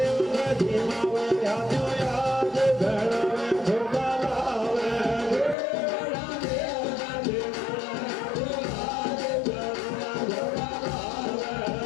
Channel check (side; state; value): right; drops out; at 5.6 s